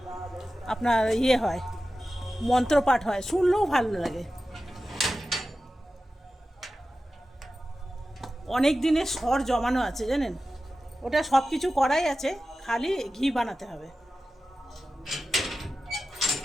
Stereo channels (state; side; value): normal; both; correlation 0.94